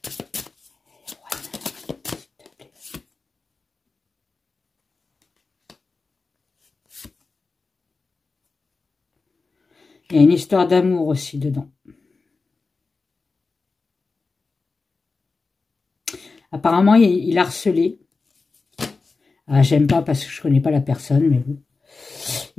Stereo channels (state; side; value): quieter; right; 4.0 dB